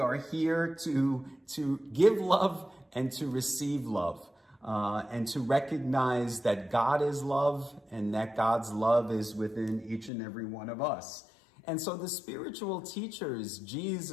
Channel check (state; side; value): drops out; right; at 10.1 s